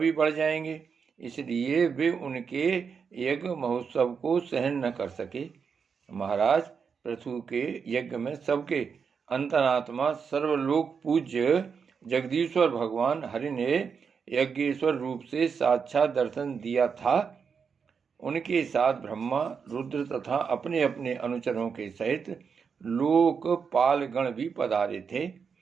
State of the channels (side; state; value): left; quieter; 6.1 dB